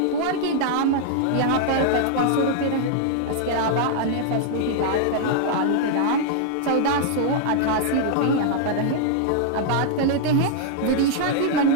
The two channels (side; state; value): both; different; correlation -0.01